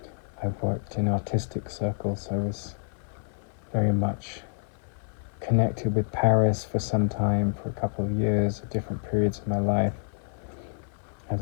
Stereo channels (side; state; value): right; silent; 59 dB below the other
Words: I've worked in artistic circles. I was very much connected with Paris for some time, for a couple of years, at different periods of my life.